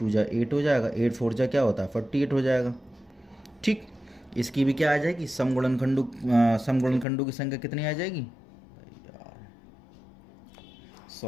जा 8 हो जाएगा, 8 4 जा क्या होता है, 48 हो जाएगा। ठीक, इसकी भी क्या आ जाएगी, सम गुणनखंडों की संख्या कितनी आ जाएगी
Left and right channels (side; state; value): right; drops out; at 7.1 s